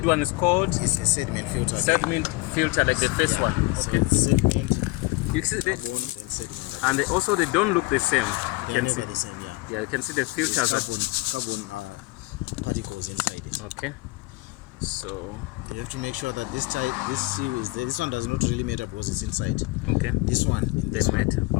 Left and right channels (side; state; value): right; quieter; 22.0 dB